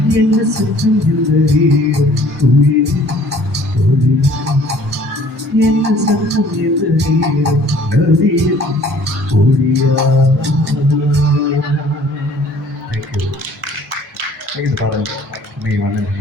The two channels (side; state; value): both; normal; correlation 0.54